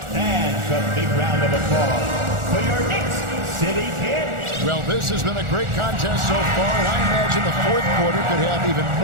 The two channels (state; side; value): late; left; 1.4 ms